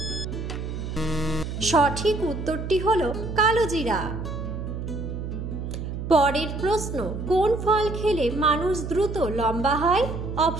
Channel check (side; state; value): right; noise; hum, 6 dB below the sound